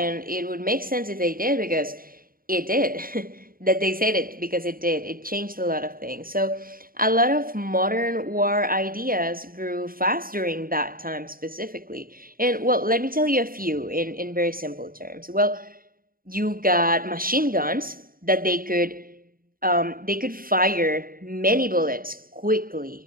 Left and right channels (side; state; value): left; late; 0.42 ms